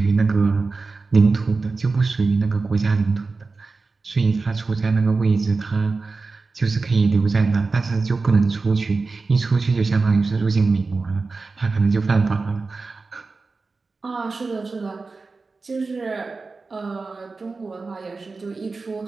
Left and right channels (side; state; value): left; quieter; 4.0 dB